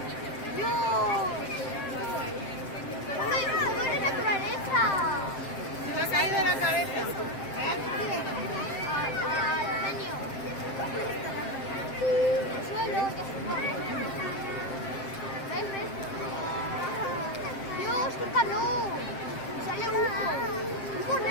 Dios. ¿Cómo es la naturaleza? Se me ha caído de la cabeza. Al genio. El suelo ya se pone. ¿Ves? Dios, qué calor. Sale humo. Humo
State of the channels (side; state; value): right; late; 7.7 ms